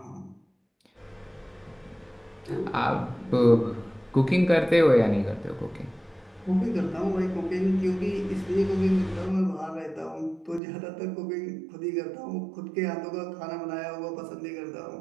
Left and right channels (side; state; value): left; drops out; at 10.6 s